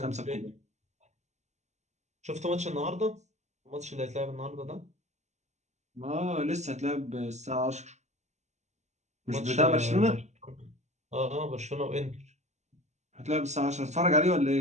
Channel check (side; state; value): left; late; 0.33 ms